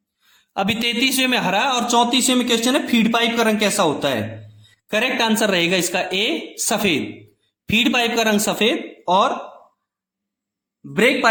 अभी 33वें में हरा और 34वें में क्वेश्चन है फीड पाइप का रंग कैसा होता है। करेक्ट आंसर रहेगा इसका ए, सफेद। फीड पाइप का रंग सफेद और ब्रेक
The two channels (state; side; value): identical; both; correlation 1.00